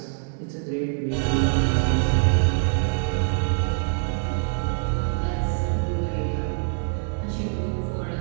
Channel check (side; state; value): left; silent; 62 dB below the other